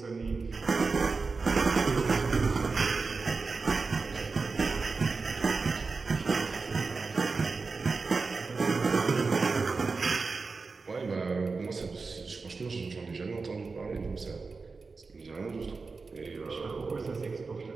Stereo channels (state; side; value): quieter; left; 4.3 dB